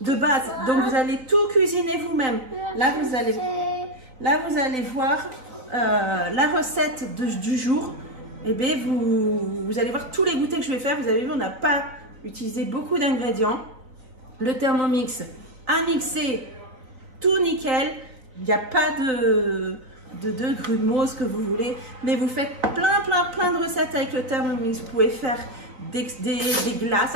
base. Donc vous allez tout cuisiner vous-même. Là vous allez voir la recette du jour. Et bien vous allez voir tous les goûters que je vais faire. Vous avez vu, on n'a pas utilisé beaucoup d'ingrédients. Le Thermomix a mixé tout nickel. Il n'y a pas de grumeaux, ce que vous voulez. Mais vous faites plein de recettes avec le Thermomix. Vous pouvez faire des glaces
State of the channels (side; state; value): left; late; 4.1 ms